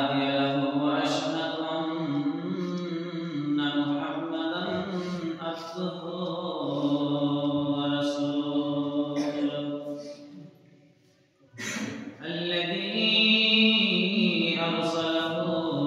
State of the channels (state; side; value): identical; both; correlation 1.00